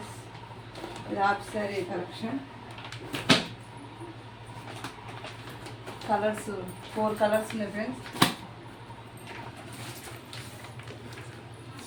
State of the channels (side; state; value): both; identical; correlation 1.00